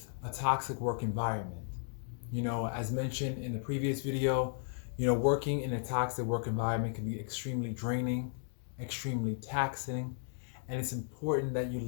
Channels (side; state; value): right; silent; digital silence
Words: a toxic work environment. As mentioned in the previous video, working in a toxic work environment can be extremely draining, extremely taxing, and it's important that you